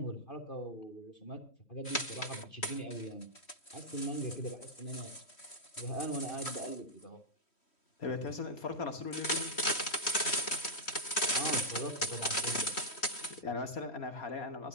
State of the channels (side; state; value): right; late; 3.1 ms